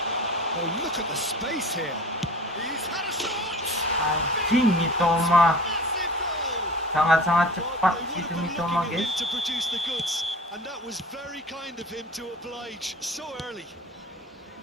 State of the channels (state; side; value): normal; both; correlation 0.39